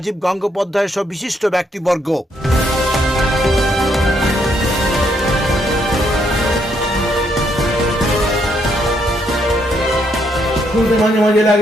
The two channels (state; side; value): normal; both; correlation 0.74